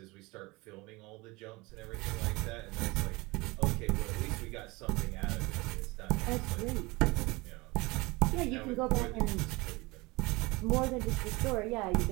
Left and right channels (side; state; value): left; quieter; 23.5 dB